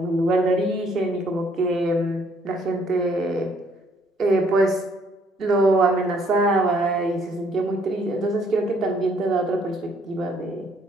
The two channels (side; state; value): both; normal; correlation 0.65